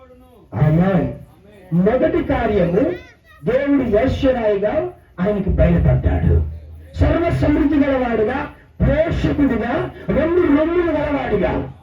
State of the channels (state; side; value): identical; both; correlation 1.00